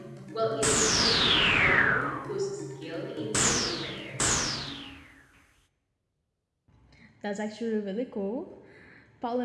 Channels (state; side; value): identical; both; correlation 1.00